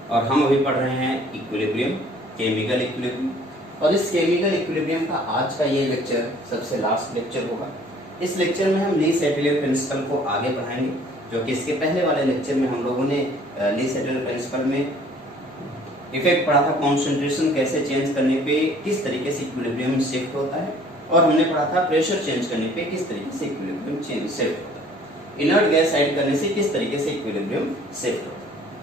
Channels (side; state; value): both; normal; correlation 0.55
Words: और हम अभी पढ़ रहे हैं इक्विलिब्रियम, केमिकल इक्विलिब्रियम। और इस केमिकल इक्विलिब्रियम का आज का ये लेक्चर सबसे लास्ट लेक्चर होगा। इस लेक्चर में हम ली सेटलियर प्रिंसिपल को आगे बढ़ाएंगे, जो कि इसके पहले वाले लेक्चर में हम लोगों ने ली सेटलियर प्रिंसिपल में इफेक्ट पढ़ा था, कॉन्सेंट्रेशन कैसे चेंज करने पे किस तरीके से इक्विलिब्रियम शिफ्ट होता है, और हमने पढ़ा था प्रेशर चेंज करने पे किस तरीके से इक्विलिब्रियम चेंज शिफ्ट होता है, इनर्ट गैस ऐड करने से किस तरीके से इक्विलिब्रियम शिफ्ट होता है।